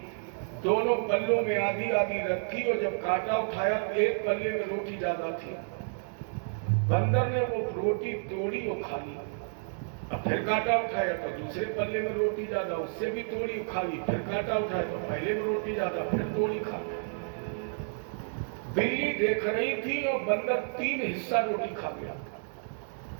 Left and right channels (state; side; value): silent; left; digital silence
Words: दोनों पल्लों में आधी आधी रखी, और जब कांटा उठाया तो एक पल्ले में रोटी ज्यादा थी। बंदर ने वो रोटी तोड़ी और खा ली। अब फिर कांटा उठाया तो दूसरे पल्ले में रोटी ज्यादा, उससे भी तोड़ी खा ली। फिर कांटा उठाया तो पहले में रोटी ज्यादा, फिर तोड़ी खा ली। बिल्ली देख रही थी और बंदर 3 हिस्सा रोटी खा गया।